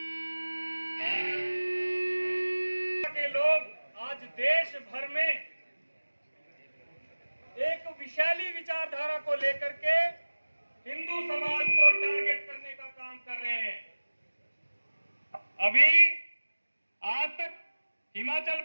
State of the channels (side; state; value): both; inverted; correlation -1.00